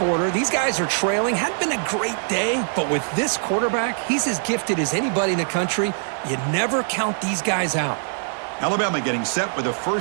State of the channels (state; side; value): silent; left; digital silence